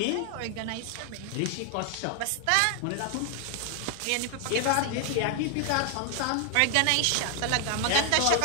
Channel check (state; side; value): different; both; correlation 0.00